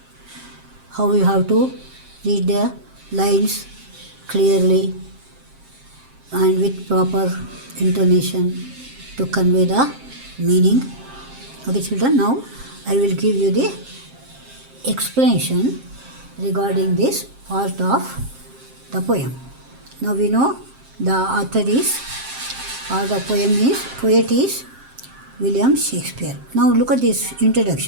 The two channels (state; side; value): late; left; 7.6 ms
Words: how you have to read the lines clearly and with proper intonation to convey the meaning. Okay, children, now I will give you the explanation regarding this part of the poem. Now we know the author is, or the poet is William Shakespeare. Now look at this